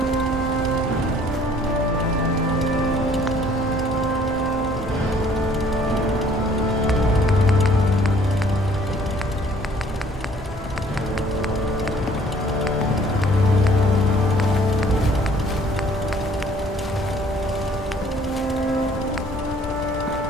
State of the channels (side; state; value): both; normal; correlation 0.57